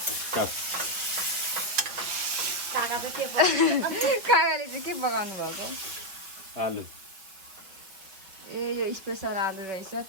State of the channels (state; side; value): late; left; 5.3 ms